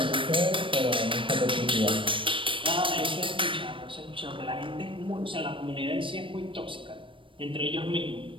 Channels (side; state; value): left; late; 0.25 ms